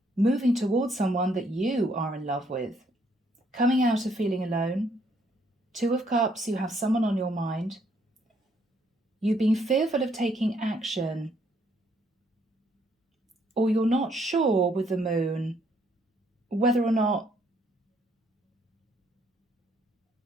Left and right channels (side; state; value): both; normal; correlation 0.69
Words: moving towards someone that you are in love with. Coming out of feeling alone. 2 of Cups, you have someone on your mind. You've been fearful of taking action. Or you're not sure with the Moon whether or not